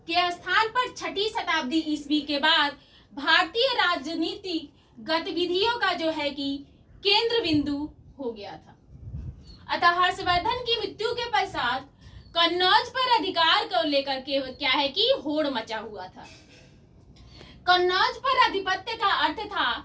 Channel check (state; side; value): identical; both; correlation 1.00